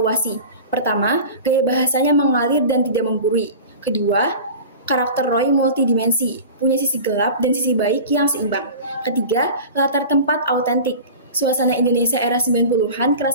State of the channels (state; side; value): inverted; both; correlation -0.36